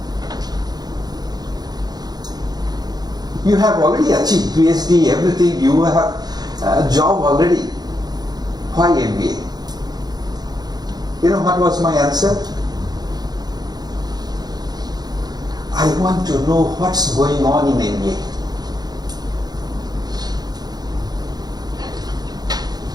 You have already achieved PhD, everything, you have a job already. Why MBA? You know what was my answer? I want to know what's going on in MBA.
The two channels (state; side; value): late; left; 0.19 ms